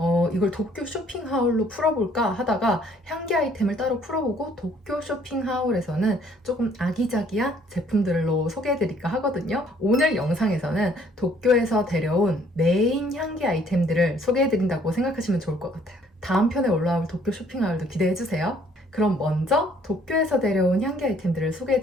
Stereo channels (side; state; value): both; normal; correlation 0.62